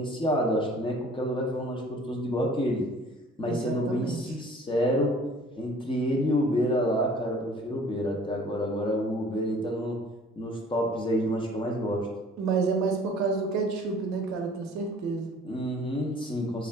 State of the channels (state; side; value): normal; both; correlation 0.51